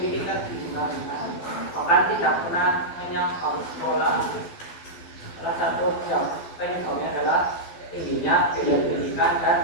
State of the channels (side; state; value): right; late; 12 ms